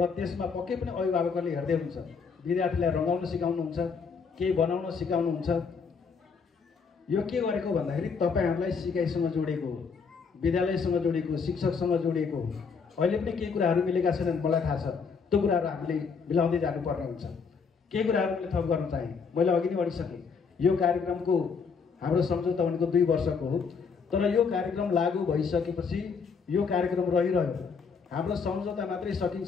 त्यसमा पक्कै पनि अभिभावकहरूले हेर्दै हुन्छ। विद्यार्थीलाई रङ्गाउन सिकाउनुहुन्छ, केही बनाउन सिकाउनुहुन्छ। यो के गरेको भन्दाखेरि तपाईँहरूलाई सिकाइसँग जोडेको हो, विद्यालयसँग जोडेको, शिक्षकसँग जोडिएको हो। अहिले पनि केही कुराहरू मिलेका छैनन्, मलाई थाहा छ। त्यो कुराहरू हामीले मिलाउँदै जानुपर्ने हुन्छ। केही कुराहरू मैले थप गर्न चाहेँ, मैले अघि नै भनिसकेँ। यो कार्यक्रमको हाम्रो सम्झौता भनेको 2 वर्षको हो, तर यो कार्यक्रम लागू भइसकेपछि यो कार्यक्रम रहिरह्यो। हाम्रो सम्झौता मात्रै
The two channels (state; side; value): quieter; right; 5.6 dB